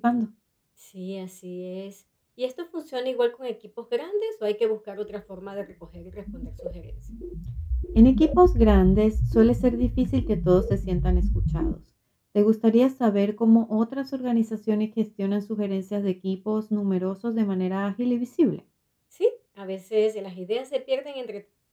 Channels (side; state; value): both; identical; correlation 1.00